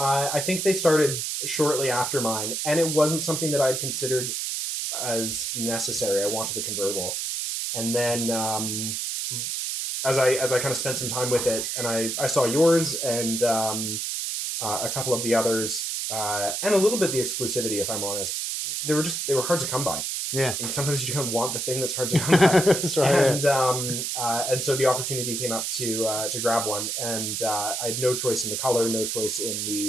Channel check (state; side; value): noise; right; hiss, 2 dB below the sound